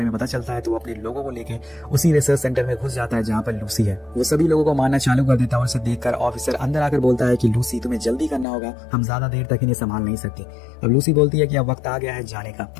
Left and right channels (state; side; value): drops out; right; at 8.5 s